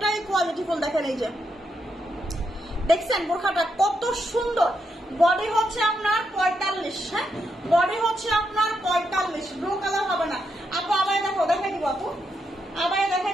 কোয়ালিটিফুল। দেখেন এই যে, দেখছেন বোরখাটা কত সুন্দর। বডি হচ্ছে আপনার 45, হ্যাঁ, বডি হচ্ছে আপনার 45। ব্লু কালার হবে না আপু। আবার দেখো, দেখাই দিব আপু, আবার দেখাই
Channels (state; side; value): normal; both; correlation 0.81